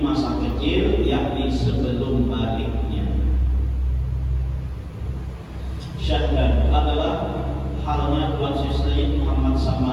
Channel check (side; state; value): both; identical; correlation 1.00